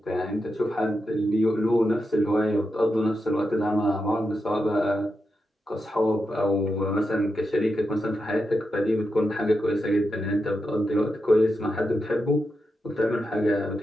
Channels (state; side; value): normal; both; correlation 0.87